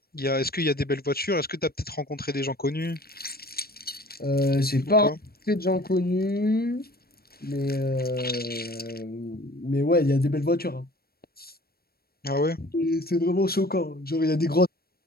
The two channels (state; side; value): late; right; 0.44 ms